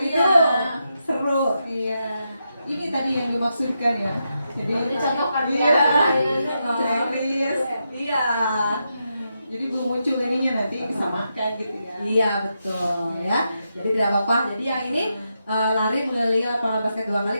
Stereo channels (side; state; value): both; inverted; correlation -0.85